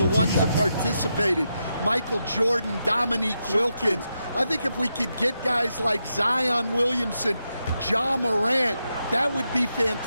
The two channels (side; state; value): both; inverted; correlation -0.85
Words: ones that participated. Michael Jordan, Dominique Wilkins. I think if we could get guys like Zion Williamson, Ja Morant, that would be